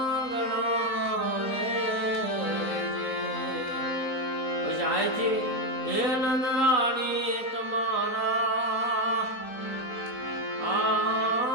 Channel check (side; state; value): right; late; 4.0 ms